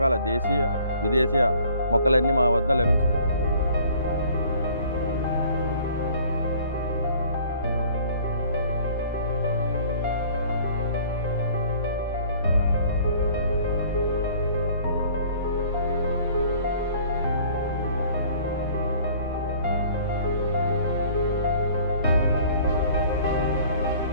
దేశీయ విదేశీయ మొక్కలన్నీ మా వద్ద లభించినాయి.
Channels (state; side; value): inverted; both; correlation -0.53